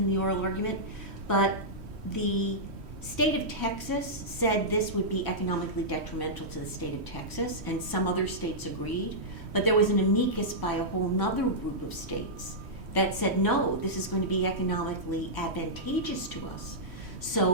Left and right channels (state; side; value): late; left; 3.1 ms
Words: the oral argument, but the state of Texas said this would be economically detrimental to the state of Texas, and some other states agreed, but there was an amicus by a whole nother group of states that said, no, this is going to be economically advantageous to us,